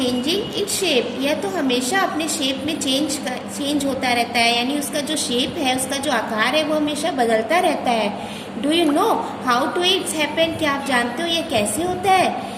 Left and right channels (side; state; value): both; identical; correlation 1.00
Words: it shape. यह तो हमेशा अपने शेप में चेंज होता रहता है, यानी उसका जो शेप है, उसका जो आकार है वो हमेशा बदलता रहता है। Do you know how to it's happen? क्या आप जानते हो ये कैसे होता है?